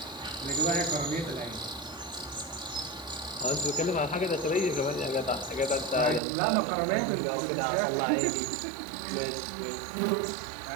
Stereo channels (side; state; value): left; drops out; at 6.2 s